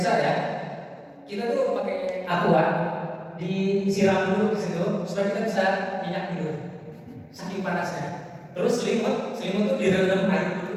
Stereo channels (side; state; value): both; identical; correlation 1.00